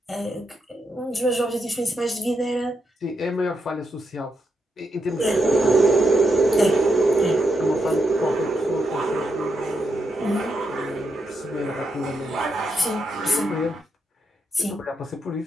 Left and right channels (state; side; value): normal; both; correlation 0.82